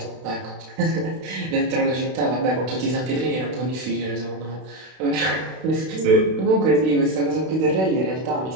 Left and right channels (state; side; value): late; left; 32 ms